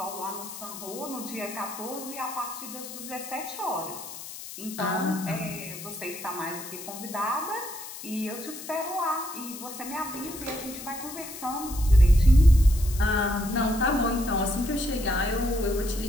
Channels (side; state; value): left; noise; hiss, 12 dB below the sound